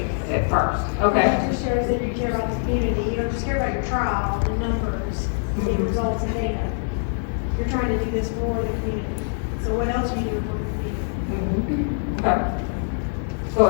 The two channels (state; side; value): silent; right; 63 dB below the other